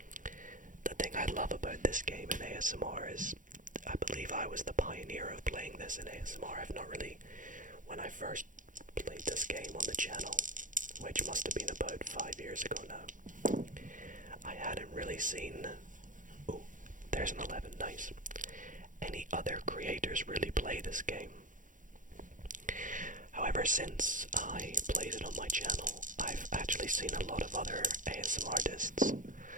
The thing I love about this game in ASMR is I believe I was the pioneer of playing this in ASMR. I've not really, when I first played this game on the channel, which must have been about 5 years ago now, I hadn't really seen, oh, there's an 11, nice, any other creators really play this game. However, since I played it on my channel, I've actually seen a lot of other ASMR artists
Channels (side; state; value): left; late; 0.38 ms